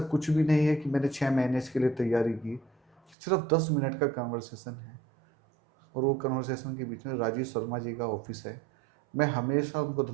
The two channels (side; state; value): left; drops out; at 3.2 s